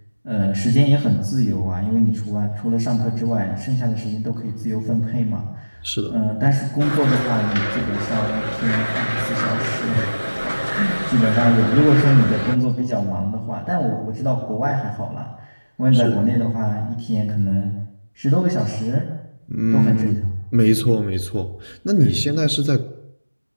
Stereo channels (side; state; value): both; inverted; correlation -1.00